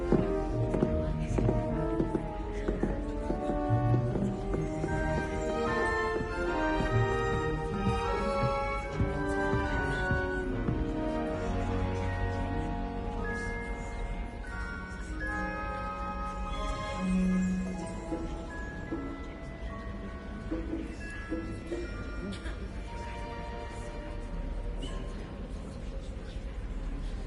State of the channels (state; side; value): identical; both; correlation 1.00